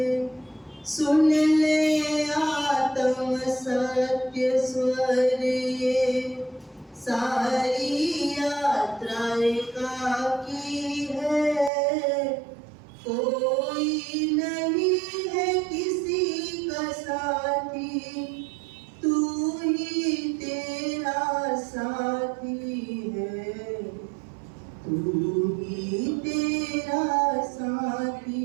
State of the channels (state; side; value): drops out; left; at 11.7 s